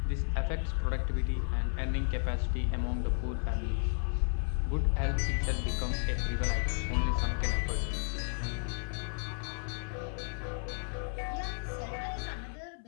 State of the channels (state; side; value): silent; right; 56 dB below the other